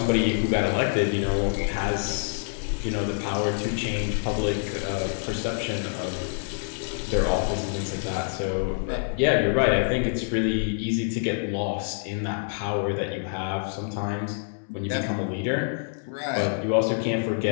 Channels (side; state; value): right; silent; 61 dB below the other